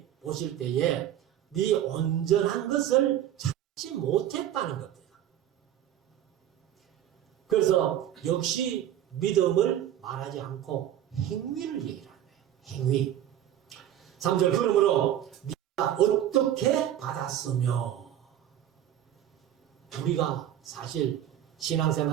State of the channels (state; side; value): quieter; left; 11.3 dB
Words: 보실 때에 네 온전한 것을 찾지 못했다는 겁니다. 그래서 역시 믿음을 말하지 않고 행위를 얘기를 하는 거예요. 행위. 3절 그러므로 네가 어떻게 받았으며. 우리가 사실